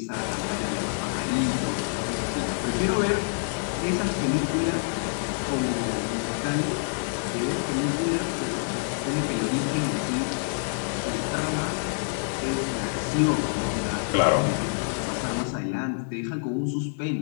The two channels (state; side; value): silent; right; 58 dB below the other